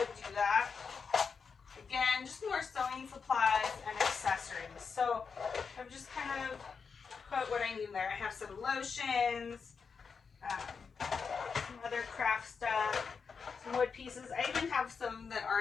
do that. Again, just more sewing supplies and accessories. So I've just kind of put what I need there. I have some lotions, some other craft stuff, some wood pieces. I even have some that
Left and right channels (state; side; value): quieter; right; 5.6 dB